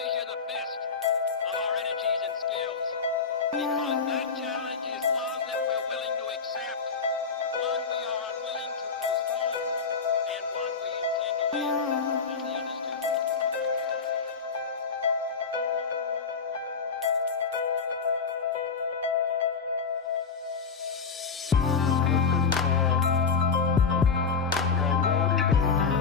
the best of our energies and skills. Because that challenge is one that we're willing to accept, one we are unwilling to postpone, and one we intend to win.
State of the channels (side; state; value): right; quieter; 5.4 dB